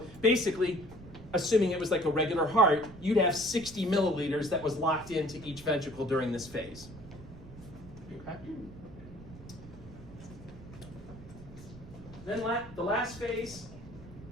basically, assuming it was like a regular heart, you'd have 60 milliliters that was locked into each ventricle during this phase. Okay. Then the last phase,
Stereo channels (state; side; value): noise; right; rumble, 16 dB below the sound